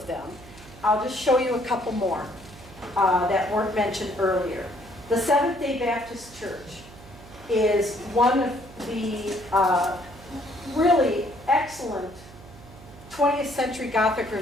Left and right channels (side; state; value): right; noise; hum, 19 dB below the sound